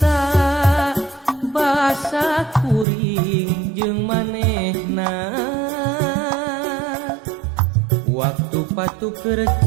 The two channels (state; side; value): drops out; left; at 2.9 s